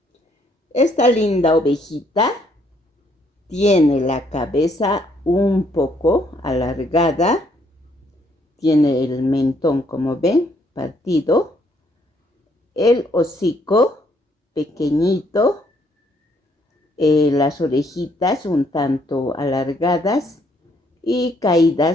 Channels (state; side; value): normal; both; correlation 0.69